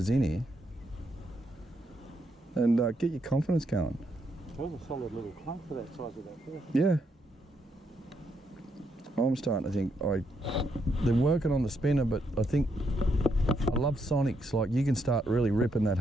in here. And get your confidence going. That was a solid little clunk for that size of that fish. Yeah. I'm starting to think, they're working on the spinner, but I think, I love sonics. Like, you can start really ripping that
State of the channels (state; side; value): normal; both; correlation 0.77